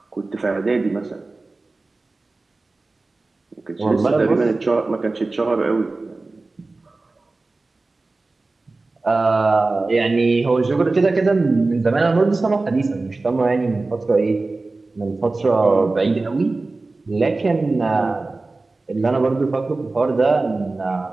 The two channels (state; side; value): quieter; left; 3.4 dB